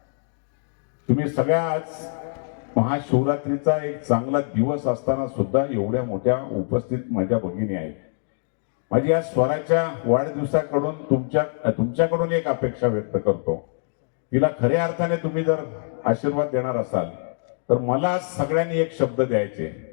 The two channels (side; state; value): right; silent; digital silence